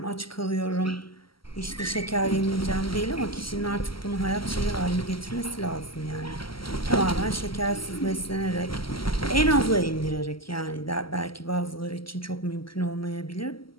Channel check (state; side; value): late; right; 0.74 ms